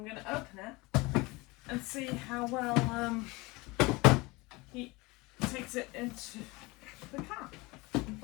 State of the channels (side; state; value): right; quieter; 23.7 dB